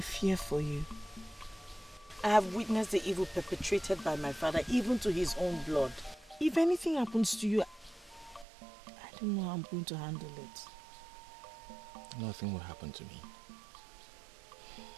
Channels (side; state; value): left; drops out; at 8.5 s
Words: for you. I have witnessed the evil perpetrated by my father, even to his own blood. If anything happens to you, I don't know how I'm going to handle it. Nothing will happen to me.